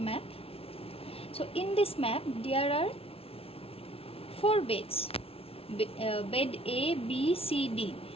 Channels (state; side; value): late; right; 0.27 ms